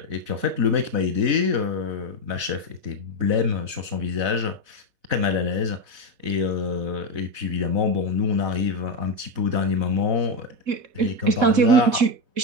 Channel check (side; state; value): left; late; 4.0 ms